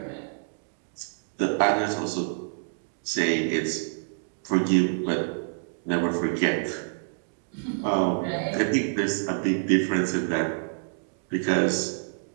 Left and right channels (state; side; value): silent; left; digital silence